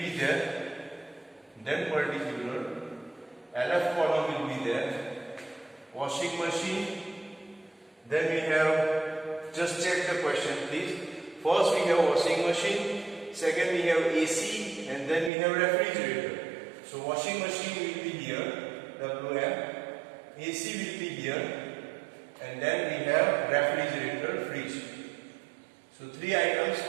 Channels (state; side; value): drops out; left; at 15.3 s